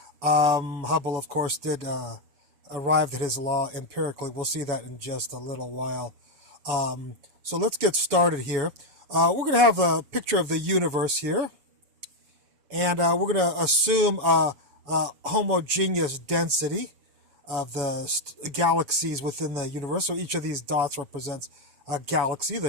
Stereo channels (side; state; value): left; late; 7.1 ms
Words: Hubble, of course, did arrive at his law empirically. We'll see that in just a little while. So let's get started here. We're going to have a picture of the universe here. And we're going to assume a homogeneous density of the galaxies within the universe. So each of these dots represents a galaxy,